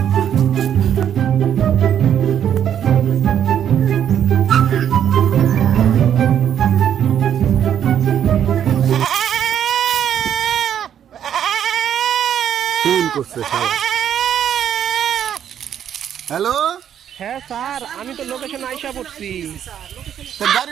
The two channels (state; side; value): quieter; left; 9.5 dB